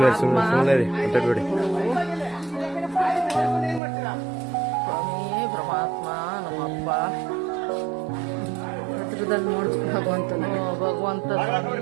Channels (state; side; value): drops out; left; at 3.8 s